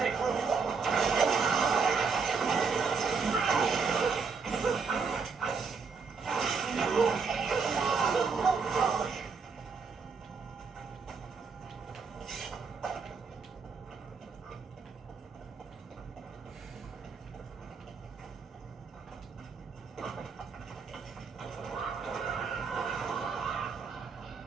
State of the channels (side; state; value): left; quieter; 5.2 dB